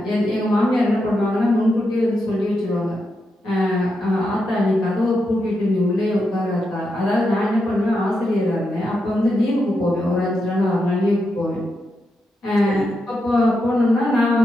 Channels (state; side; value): normal; both; correlation 0.85